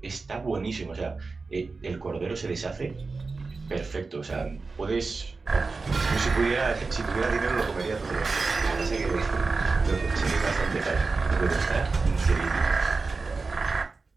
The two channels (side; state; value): left; quieter; 4.1 dB